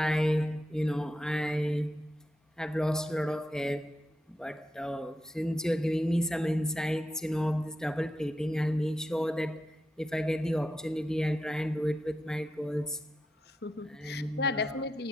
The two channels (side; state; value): both; normal; correlation 0.88